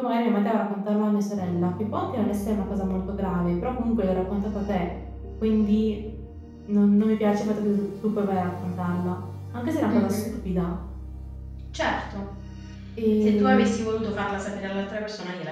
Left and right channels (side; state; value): both; identical; correlation 1.00